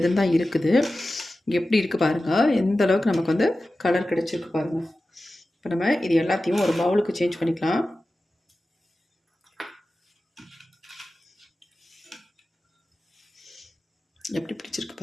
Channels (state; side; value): normal; both; correlation 0.94